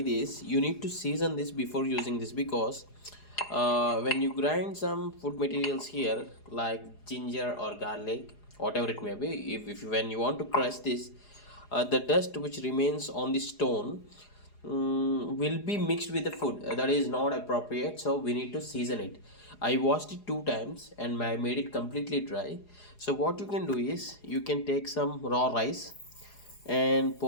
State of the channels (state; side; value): late; right; 4.8 ms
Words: this, you need to season this before using this because when you grind some food materials here, like ginger or garlic, whatever it may be, if when you want to crush this, the dust which remains on the stone will be mixed with the food. That is not appropriate, so we need to season it. I washed it 2 times and I made it completely dry. So what you can do is you can take some raw rice and